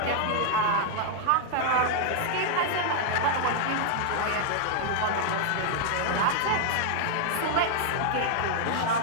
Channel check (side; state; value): both; different; correlation 0.00